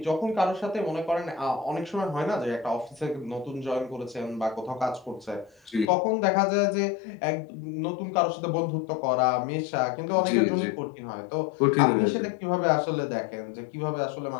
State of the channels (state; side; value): drops out; right; at 5.9 s